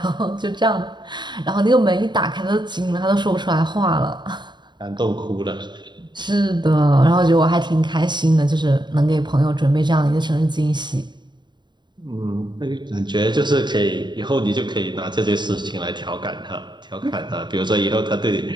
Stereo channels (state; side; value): late; left; 0.22 ms